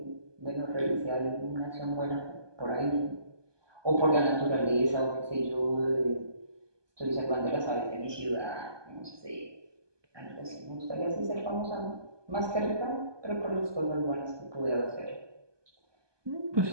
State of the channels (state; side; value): late; left; 1.2 ms